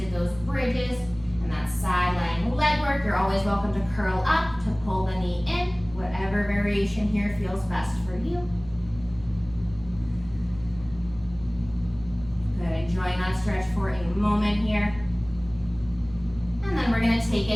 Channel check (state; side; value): noise; right; hum, 19 dB below the sound